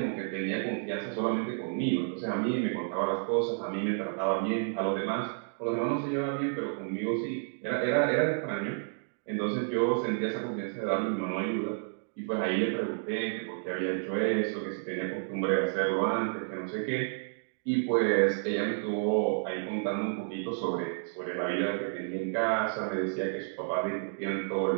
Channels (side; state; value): left; silent; digital silence